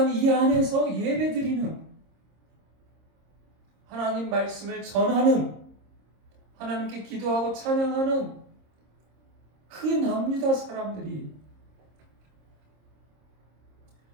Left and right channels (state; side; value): late; left; 26 ms